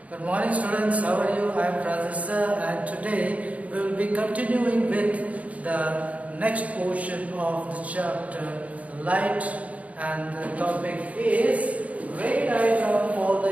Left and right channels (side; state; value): left; late; 0.068 ms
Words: Good morning students, how are you? I am Professor and today we will be continuing with the next portion of the chapter light, and the topic is ray diagram for